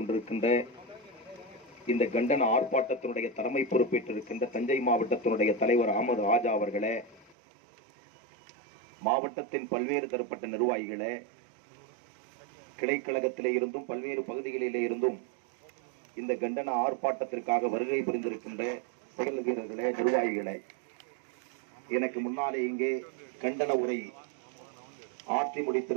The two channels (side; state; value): left; drops out; at 7.4 s